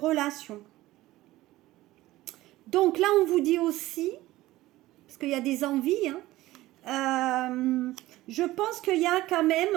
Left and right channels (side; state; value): left; quieter; 17.0 dB